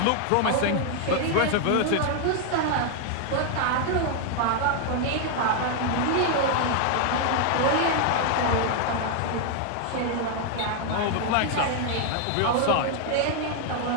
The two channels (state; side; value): different; both; correlation 0.00